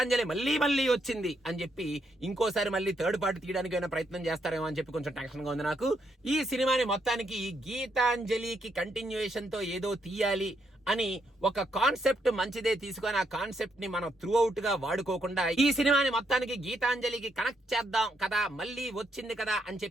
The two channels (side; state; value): both; normal; correlation 0.77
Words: మళ్ళీ వచ్చింది అని చెప్పి ఇంకోసారి మళ్ళీ థర్డ్ పార్ట్ తీయడానికి ఏమైనా ప్రయత్నం చేస్తారేమో అని చెప్పి కొంచెం టెన్షన్ గా ఉంది నాకు. ఈ సినిమాని మొత్తానికి గీతాంజలికి కంటిన్యూయేషన్ తో ఏదో తీయాలి అని ఒక కాన్సెప్ట్ మంచిదే తీసుకొని ఆ కాన్సెప్ట్ ని మనం త్రూ అవుట్ గా వాడుకోకుండా ఈ సినిమాని మొత్తానికి గీతాంజలికి కనెక్ట్ చేద్దాం కదా, మళ్ళీ వచ్చింది కదా అని